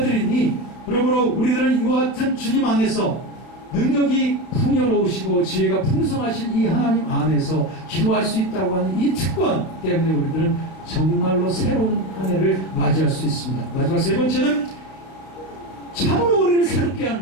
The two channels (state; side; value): late; right; 32 ms